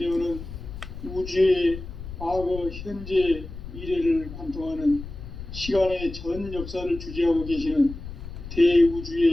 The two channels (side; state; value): left; noise; rumble, 11 dB below the sound